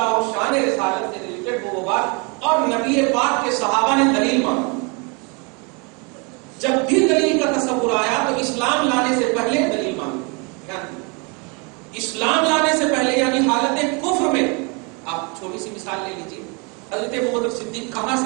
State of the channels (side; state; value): left; quieter; 32.2 dB